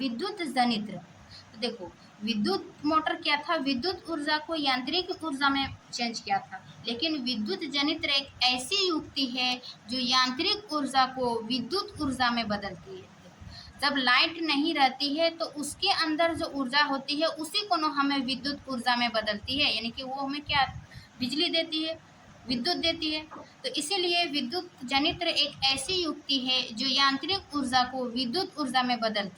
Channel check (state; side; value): identical; both; correlation 1.00